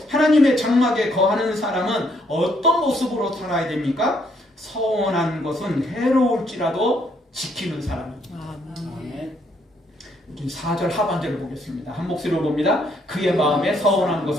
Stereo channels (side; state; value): both; normal; correlation 0.71